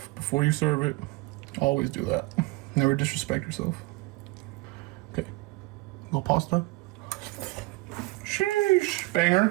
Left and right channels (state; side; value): quieter; left; 22.4 dB